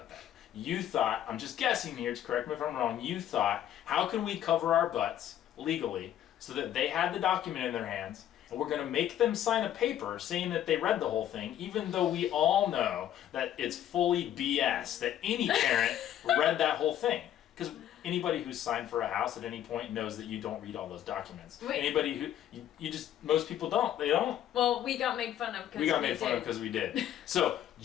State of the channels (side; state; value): right; quieter; 11.2 dB